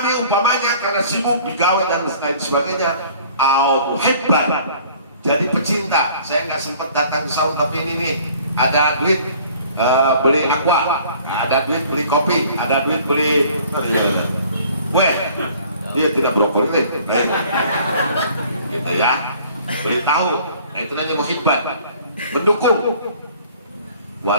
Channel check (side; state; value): both; inverted; correlation -0.53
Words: umpamanya karena sibuk digawe dan lain sebagainya, au muhibban, jadi pecinta. Saya nggak sempat datang ke saung tapi ini nih ada duit. Beli aqua, ada duit beli kopi, ada duit beli kue. Dia tidak brokoli, gitu ya. Beritahu, nah itu namanya muhibban, mendukung.